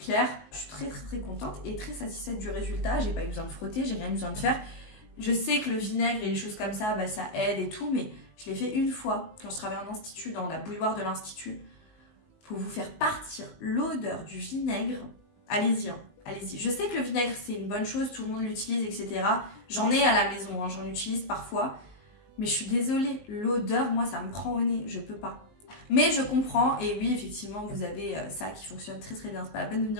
Je suis très, très, très contente et très satisfaite du résultat. J'ai pas eu besoin de frotter, j'ai rien eu besoin de faire. Je sais que le vinaigre et les choses comme ça, ça aide et tout, mais je l'ai fait une fois quand je travaillais en institut, dans la bouilloire de l'institut. Pour vous faire partir l'odeur du vinaigre, allez-y, hein, allez-y. Je sais que le vinaigre, c'est une bonne chose, tout le monde l'utilise, etc. J'en ai à la maison, hein, j'en utilise parfois. Mais je suis désolée, l'odeur, moi, ça me prend au nez, je peux pas. Mais je comprends, et oui, effectivement, vous avez ça qui fonctionne très très bien. C'est pas la peine de me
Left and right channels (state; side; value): late; right; 19 ms